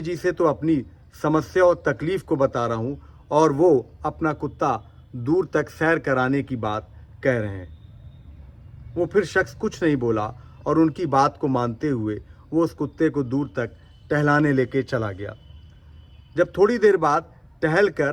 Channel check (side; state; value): both; identical; correlation 1.00